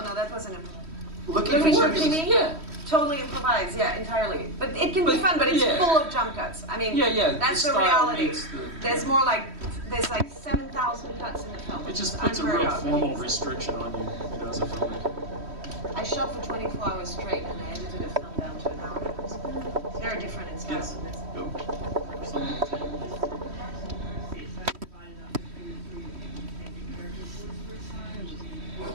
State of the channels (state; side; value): late; left; 3.1 ms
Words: that wasn't improvised. Looking Looking for for Jimmy. Jimmy? Yeah. Totally improvised, yeah, entirely. But it can be fun, but it's yeah. full of jump cuts. I mean, Yeah, that's the the style reality. makes the- There's like 7,000 cuts in the film. It just It's puts a unheard real of. formal restriction on you, as a filmmaker. I shot for 24 hours straight and I edited a film down to an hour. It's very different in style Yes. from this. Go. Something.